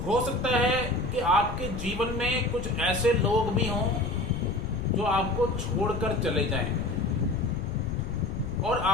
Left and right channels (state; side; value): noise; left; rumble, 6 dB below the sound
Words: हो सकता है कि आपके जीवन में कुछ ऐसे लोग भी हों जो आपको छोड़कर चले जाएं और